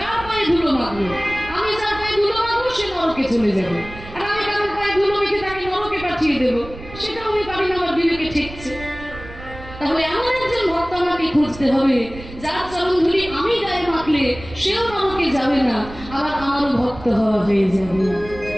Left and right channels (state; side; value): noise; right; rumble, 15 dB below the sound